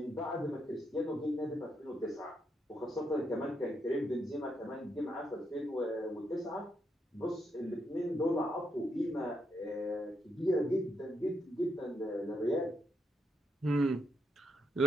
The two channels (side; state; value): both; normal; correlation 0.79